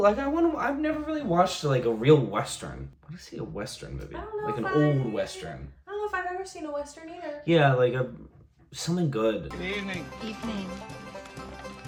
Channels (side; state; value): both; identical; correlation 1.00